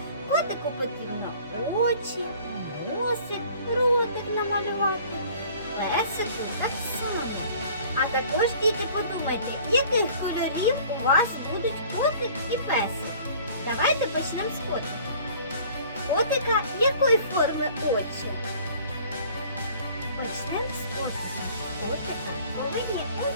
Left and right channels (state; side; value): inverted; both; correlation -0.50